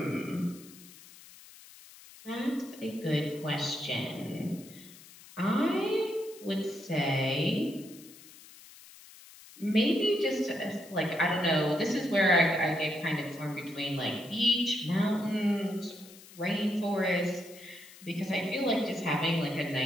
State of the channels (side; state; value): left; noise; hiss, 20 dB below the sound